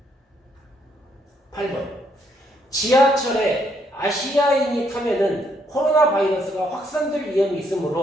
8번. 지하철에 아시아인이 타면은 코로나 바이러스가 확산될 위험이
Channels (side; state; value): both; normal; correlation 0.72